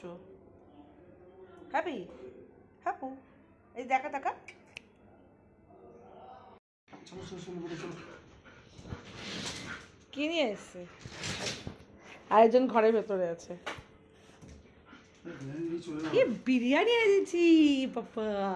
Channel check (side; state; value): both; identical; correlation 1.00